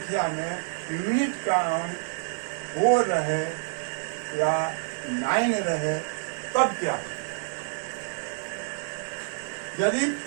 में यूनिट का अंक 4 रहे या 9 रहे, तब क्या? यदि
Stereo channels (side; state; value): left; silent; digital silence